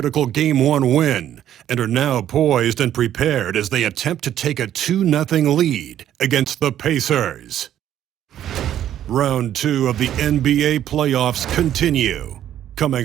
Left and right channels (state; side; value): quieter; left; 11.2 dB